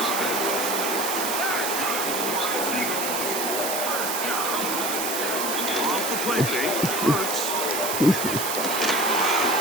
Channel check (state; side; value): noise; right; hiss, 2 dB below the sound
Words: Off the play fake, Hurts.